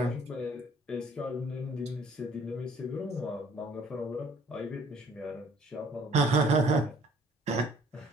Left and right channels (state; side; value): normal; both; correlation 0.57